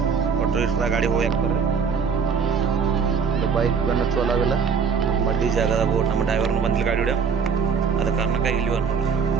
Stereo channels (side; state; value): left; quieter; 5.9 dB